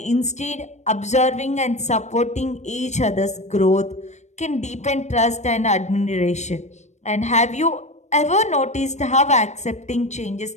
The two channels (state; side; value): late; right; 0.34 ms